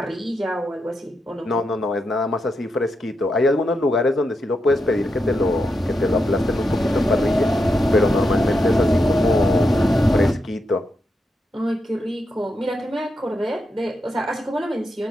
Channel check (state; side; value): normal; both; correlation 0.85